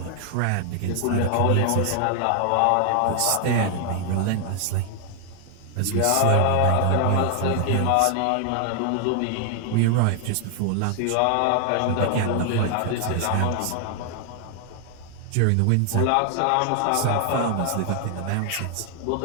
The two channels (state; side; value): different; both; correlation 0.00